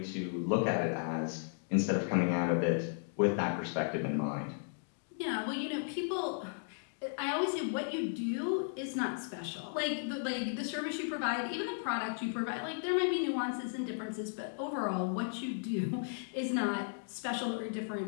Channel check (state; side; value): silent; right; digital silence